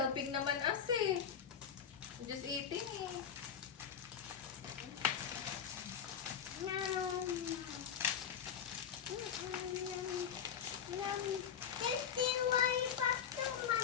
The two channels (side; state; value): right; quieter; 8.0 dB